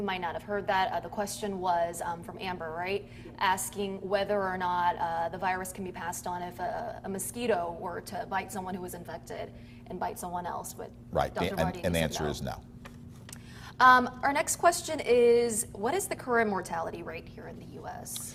might not have heard that, the question was from Amber, right? Asking whether or not the virus can be passed on if a mosquito were to bite someone who was infected and bite someone else. But right, Dr. Vartian, and the said answer no. is no. Our next question is, what is the current mortality rate here in the U.S.?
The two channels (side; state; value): both; identical; correlation 1.00